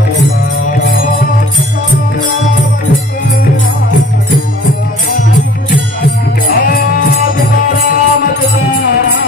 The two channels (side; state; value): both; normal; correlation 0.50